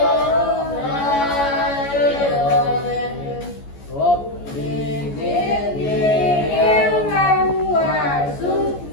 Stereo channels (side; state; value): right; late; 14 ms